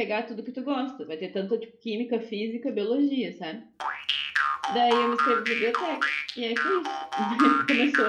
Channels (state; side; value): identical; both; correlation 1.00